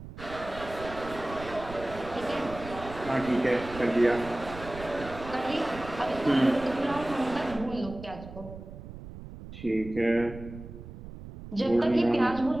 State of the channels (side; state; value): right; noise; rumble, 13 dB below the sound